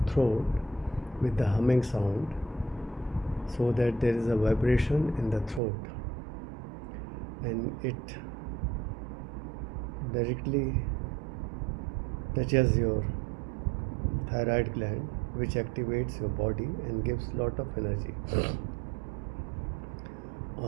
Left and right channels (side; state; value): left; drops out; at 5.6 s